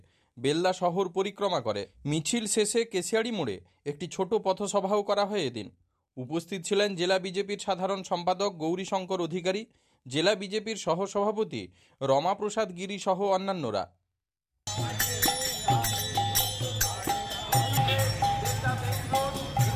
বেলদা শহর পরিক্রমা করে। মিছিল শেষে কেশিয়াড়ি মোড়ে একটি ছোট পথসভাও করা হয়। এদিন উপস্থিত ছিলেন জেলা বিজেপির সাধারণ সম্পাদক গৌরীশঙ্কর অধিকারী, জেলা বিজেপির সহসভাপতি রমাপ্রসাদ গিরি সহ অন্যান্যরা।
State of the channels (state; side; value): identical; both; correlation 1.00